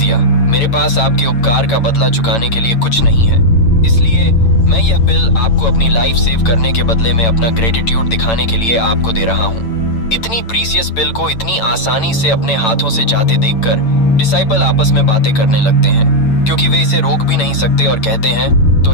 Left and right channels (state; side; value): late; right; 8.9 ms